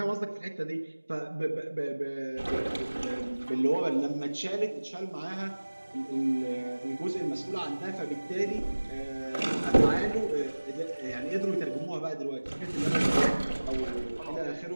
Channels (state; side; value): inverted; both; correlation -1.00